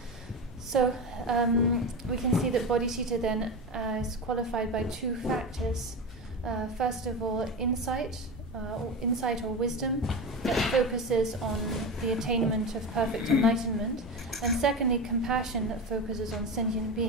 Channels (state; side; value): normal; both; correlation 0.22